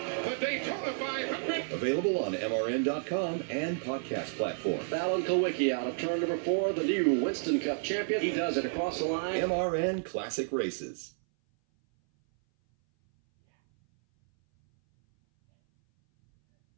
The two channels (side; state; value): left; silent; 57 dB below the other